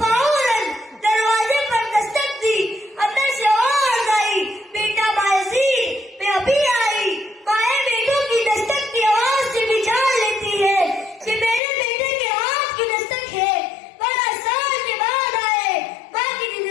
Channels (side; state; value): right; drops out; at 11.6 s